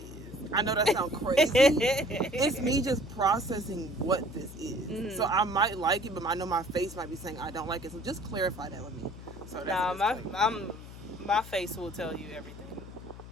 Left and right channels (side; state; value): left; noise; hum, 14 dB below the sound